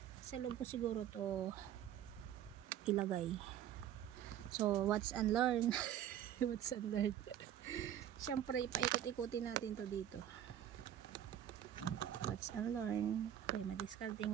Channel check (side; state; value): left; quieter; 10.8 dB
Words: sa loob ko siguro to ilagay. So what's unlearn what's unlearn syempre ipaikot-ikutin natin to dito. What's unlearn, kaya